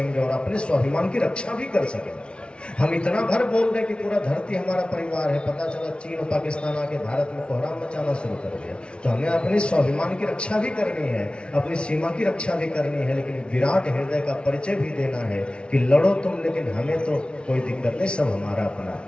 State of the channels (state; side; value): late; right; 0.057 ms